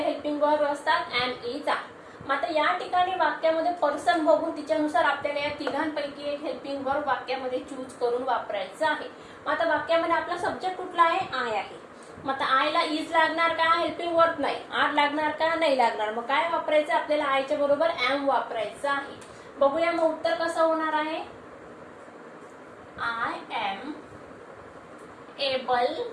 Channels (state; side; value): identical; both; correlation 1.00